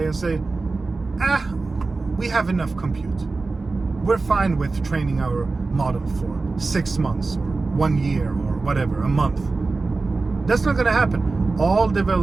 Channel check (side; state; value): left; quieter; 3.7 dB